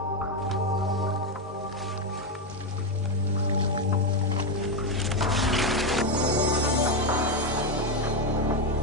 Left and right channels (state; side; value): normal; both; correlation 0.08